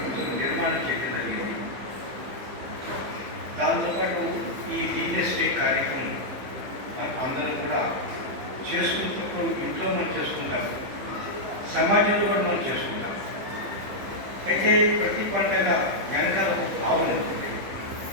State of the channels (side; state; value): left; late; 15 ms